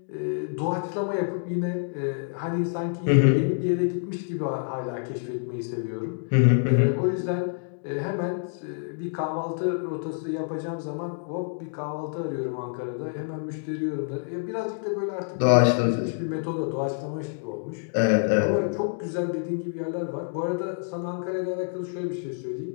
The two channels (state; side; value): silent; right; digital silence